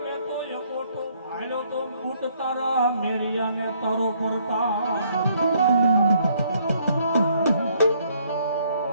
મેં તો એકોટો ભાળ્યો તો બૂટ તારા મેરિયાને તારો પરતા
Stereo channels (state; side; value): inverted; both; correlation -0.67